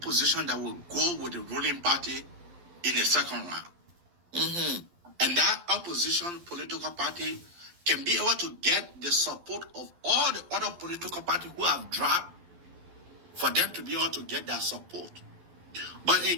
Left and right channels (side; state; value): left; late; 11 ms